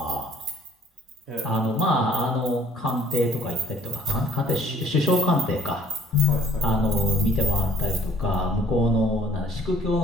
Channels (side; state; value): both; normal; correlation 0.57